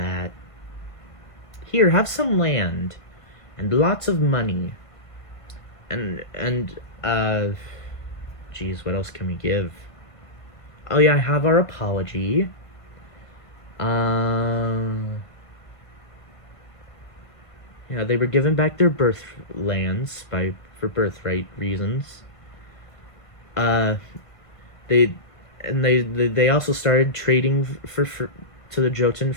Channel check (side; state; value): right; late; 1.7 ms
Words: Here, have some land, and lots of money. Geez, what else can we give? Oh yeah, I have our apology. Yeah, they were given back their birth lands for birthright reasons. They also started trading to the Jotun